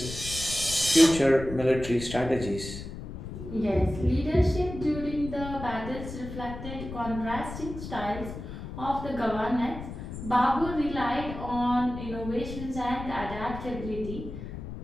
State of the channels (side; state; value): left; noise; rumble, 9 dB below the sound